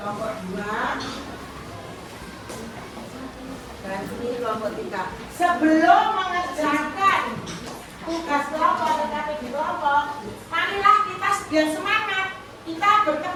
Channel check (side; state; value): both; identical; correlation 1.00